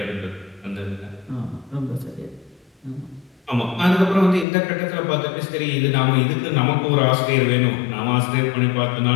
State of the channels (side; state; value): right; drops out; at 4.5 s